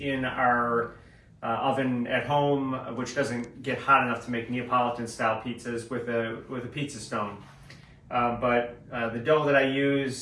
in our oven at home, which doesn't get hot enough to make Neapolitan style pizzas with a pizza stone. But the dough that I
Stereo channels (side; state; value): both; identical; correlation 1.00